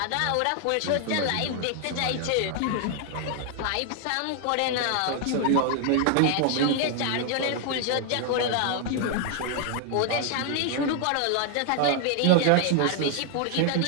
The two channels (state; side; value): different; both; correlation 0.00